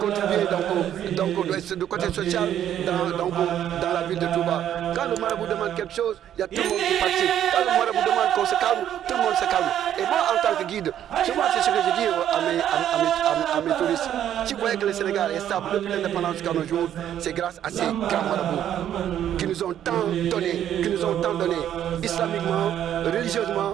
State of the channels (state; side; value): quieter; left; 10.7 dB